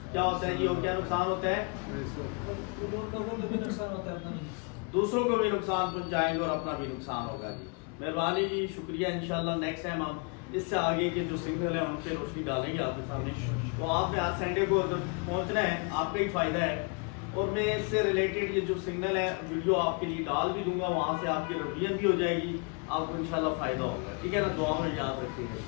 क्या होता है जी, और क्या नुकसान होता है, दूसरों को भी नुकसान पहुंचाएंगे और अपना भी नुकसान होगा जी। मेहरबानी जी, शुक्रिया। इंशाल्लाह नेक्स्ट टाइम हम इससे आगे के जो सिग्नल है उन पे रोशनी डालेंगे आपके सामने। तो आपने आज संडे को अगर पहुंचना है, आपका ही फायदा है। और मैं इससे रिलेटेड ये जो सिग्नल है वीडियो आपके लिए डाल भी दूंगा, वहाँ से आपकी रिवीजन भी हो जाएगी, आपको इंशाल्लाह फायदा होगा। ठीक है ना, दुआ में याद रखिएगा।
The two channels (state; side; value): quieter; right; 35.2 dB